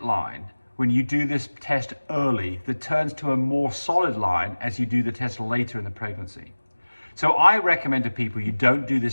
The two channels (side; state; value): both; inverted; correlation -1.00